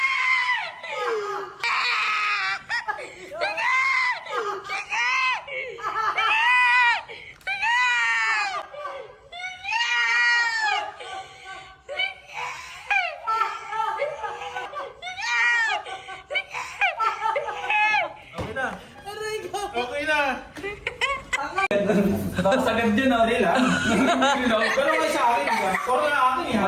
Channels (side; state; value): both; identical; correlation 1.00